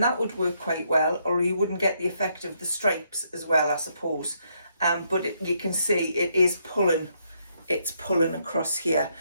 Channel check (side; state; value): both; inverted; correlation -0.75